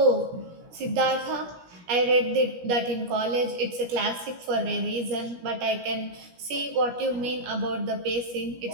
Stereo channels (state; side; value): late; left; 17 ms